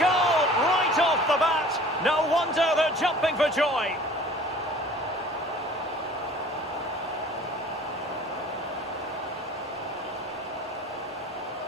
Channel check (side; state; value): both; normal; correlation 0.47